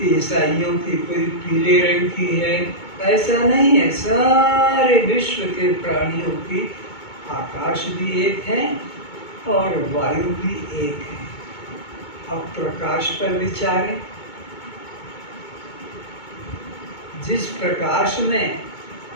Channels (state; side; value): late; right; 2.2 ms